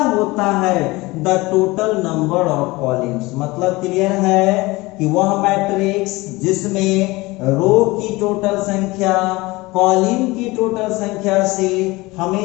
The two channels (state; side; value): quieter; right; 21.8 dB